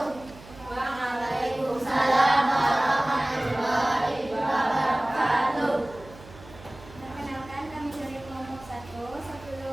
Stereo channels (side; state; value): right; noise; hum, 20 dB below the sound